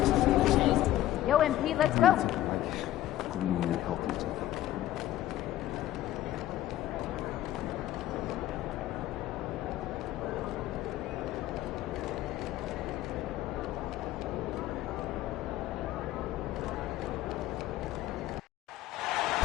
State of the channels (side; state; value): right; quieter; 13.9 dB